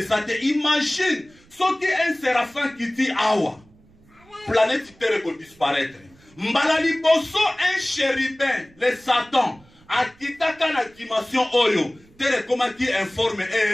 Imagine soki un séraphin qui dit awa planète terre pour disparaître. Mbala liboso un chérubin le Satan akitaka na dimension oyo terre comme qui informe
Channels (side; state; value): right; noise; rumble, 29 dB below the sound